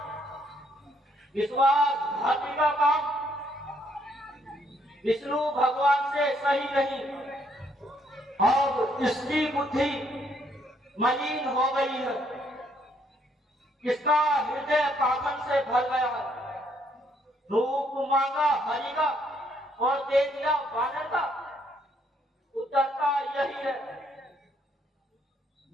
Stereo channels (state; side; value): normal; both; correlation 0.70